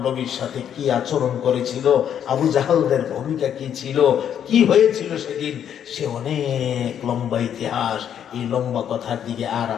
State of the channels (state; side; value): quieter; right; 9.2 dB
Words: নবীর সাথে কি আচরণ করেছিল, আবু জাহালদের ভূমিকা কি ছিল, কি হয়েছিল সেদিন, সে অনেক লম্বা ইতিহাস। এই লম্বা কথার দিকে আর